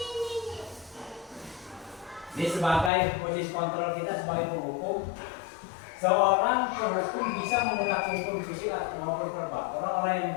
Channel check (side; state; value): right; drops out; at 2.9 s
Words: Ini sebagai posisi kontrol kita sebagai penghukum. Seorang penghukum bisa menggunakan hukum fisik maupun verbal. Orang-orang yang